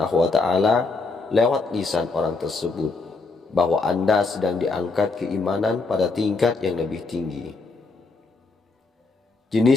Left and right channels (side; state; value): right; quieter; 3.9 dB